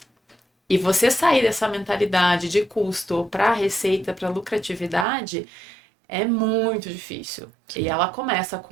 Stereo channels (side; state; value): left; drops out; at 5.1 s